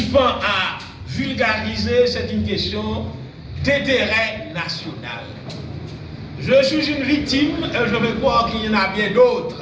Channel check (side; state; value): both; identical; correlation 1.00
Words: pend à vulgariser, c'est une question d'intérêt national. Je suis une victime et je veux croire qu'il y en a bien d'autres,